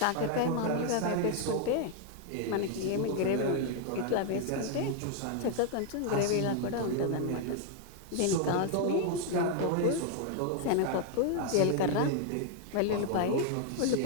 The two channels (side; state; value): both; different; correlation 0.00